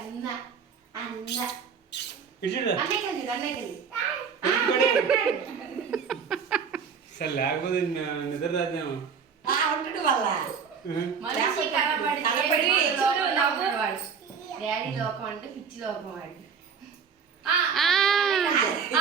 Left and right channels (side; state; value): left; quieter; 6.3 dB